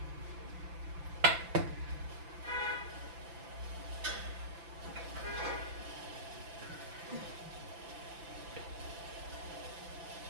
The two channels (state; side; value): late; left; 5.9 ms